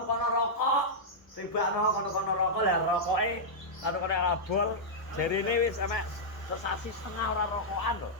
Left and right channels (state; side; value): late; right; 1.1 ms